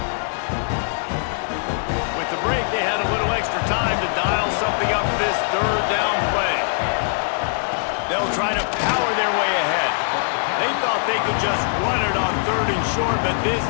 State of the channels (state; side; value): silent; right; 64 dB below the other